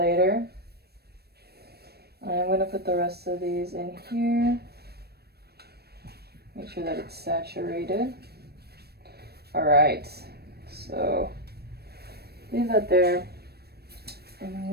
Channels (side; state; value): left; late; 0.47 ms